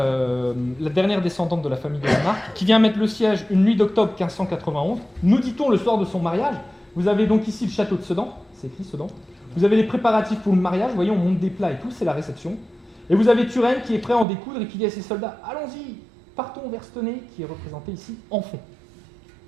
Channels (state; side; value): drops out; left; at 14.2 s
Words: dernière descendante de la famille de la Marque, qui vient mettre le siège une nuit d'octobre 1591. Nous dit-on le soir de son mariage. Vous avez donc ici le château de Sedan, c'est écrit Sedan. Vous avez les préparatifs pour le mariage, vous voyez, on monte des plats et tout, c'est la réception. Et vous avez Turenne qui est prêt à en découdre et qui dit à ses soldats « Allons-y, partons vers Stenay, qui est représenté ici en fond.